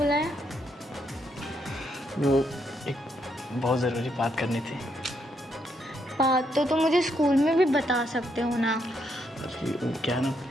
वो एक बहुत ज़रूरी बात करनी थी। बात तो तुम मुझे स्कूल में भी बता सकते हो ना। क्या है ना,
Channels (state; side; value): normal; both; correlation 0.76